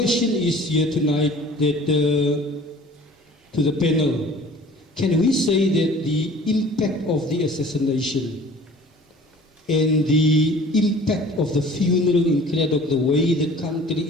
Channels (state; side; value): normal; both; correlation 0.47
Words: is here tonight that to the panel, can we say that the impact of the assassination and the impact of the funeral in Cradock, the way the country